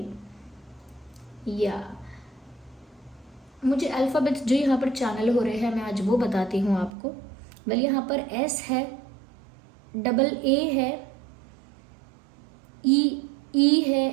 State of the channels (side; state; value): left; drops out; at 6.9 s